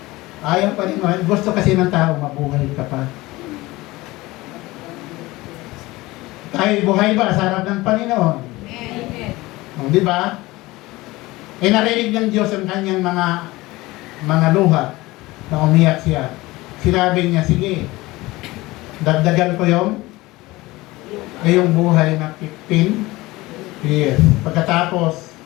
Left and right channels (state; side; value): quieter; right; 20.1 dB